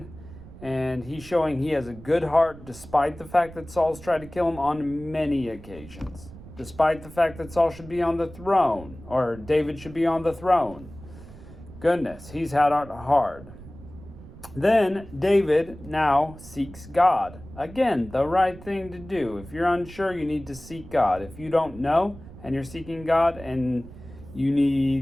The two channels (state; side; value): noise; right; rumble, 17 dB below the sound